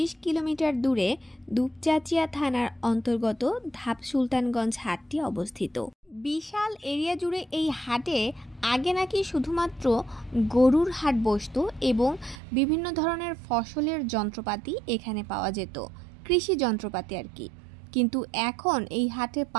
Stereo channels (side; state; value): left; drops out; at 12.4 s